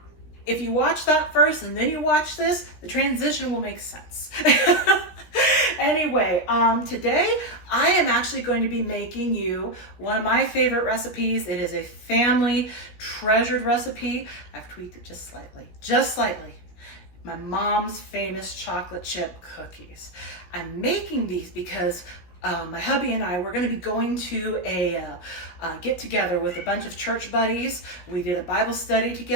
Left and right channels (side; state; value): right; late; 16 ms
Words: if you watch that first and then you watch this, the transition will make sense. Anyway, today I am actually going to be making you one of my favorite recipes. It is a family treasured recipe. I've tweaked it just slightly. My mom's famous chocolate chip cookies. I'm making these because my hubby and I, we're going to be going to a get together with a bunch of church buddies. We did a Bible study